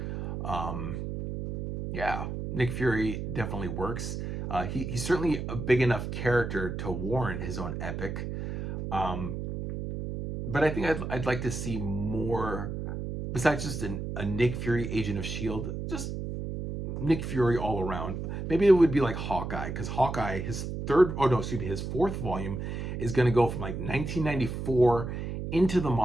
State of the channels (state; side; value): noise; right; hum, 5 dB below the sound